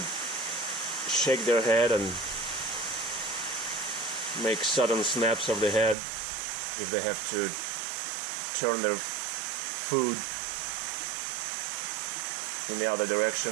shake their head and make sudden snaps of the head if they have to turn their food in the other direction,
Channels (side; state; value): left; drops out; at 6.0 s